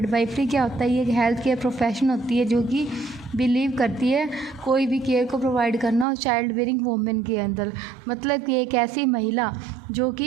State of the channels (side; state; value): left; drops out; at 6.1 s